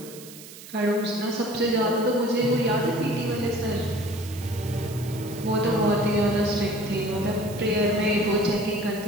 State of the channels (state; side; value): noise; right; hiss, 16 dB below the sound